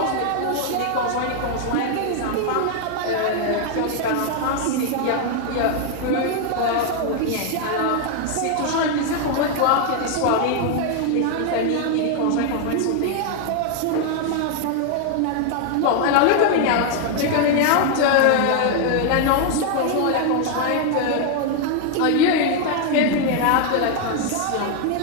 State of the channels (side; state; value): both; different; correlation 0.00